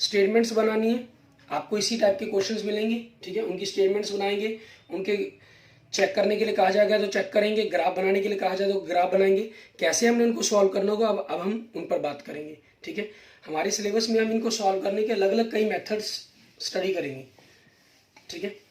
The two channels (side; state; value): both; identical; correlation 1.00